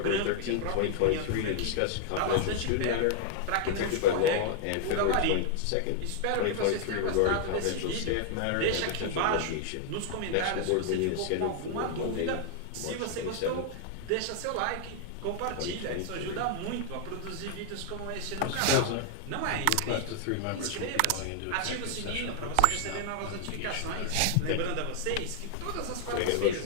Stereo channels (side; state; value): both; different; correlation 0.00